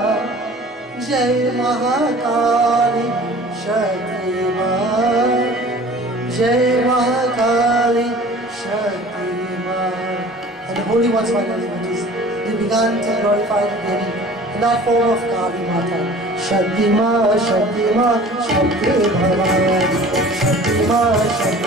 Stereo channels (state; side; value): normal; both; correlation 0.45